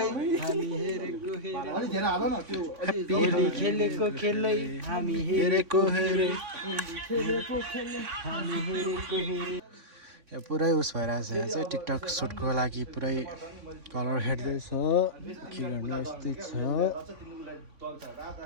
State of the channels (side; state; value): left; late; 3.5 ms